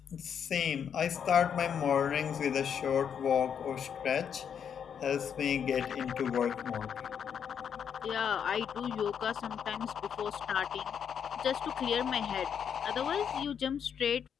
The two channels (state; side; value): quieter; right; 7.8 dB